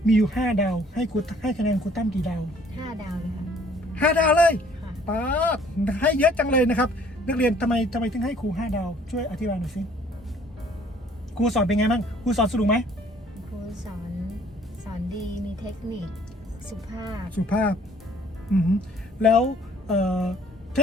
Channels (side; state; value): both; normal; correlation 0.58